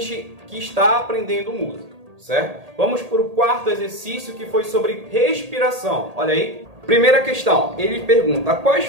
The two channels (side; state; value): left; late; 1.8 ms